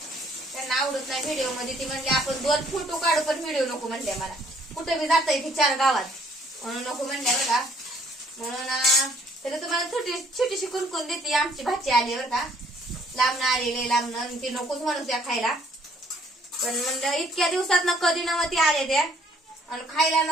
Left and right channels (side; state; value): both; normal; correlation 0.63